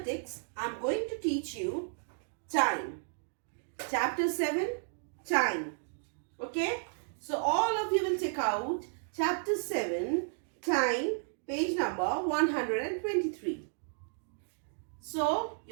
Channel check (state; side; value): silent; left; digital silence